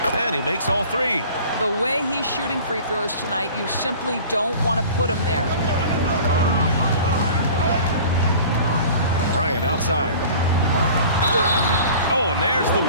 And he makes all 3. The way he's shooting free throws tonight, you simply don't want to put him there. Bryant outside. Oh, and there's the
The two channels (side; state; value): both; inverted; correlation -0.44